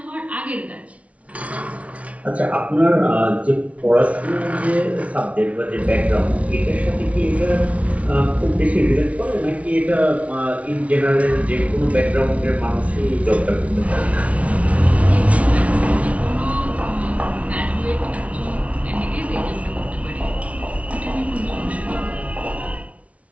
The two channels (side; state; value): left; late; 0.065 ms